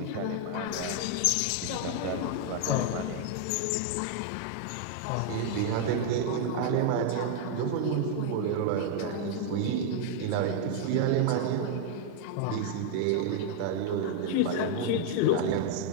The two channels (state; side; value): different; both; correlation 0.00